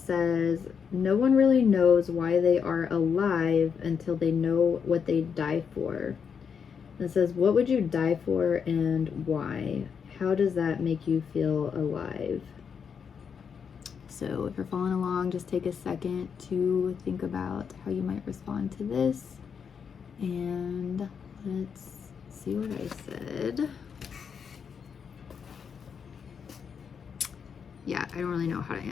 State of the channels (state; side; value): quieter; right; 6.7 dB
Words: "No one really knows why they are alive until they know what they die for." And it says, "What would you die for and why? How does that make you feel alive?" So if you're following along, just take a second to think about how you might respond to this, and let's see what I said. Yeah, I don't really know how to